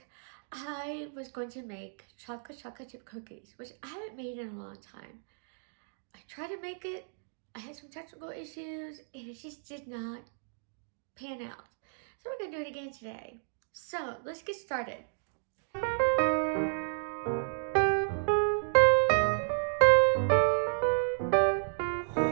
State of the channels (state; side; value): silent; left; digital silence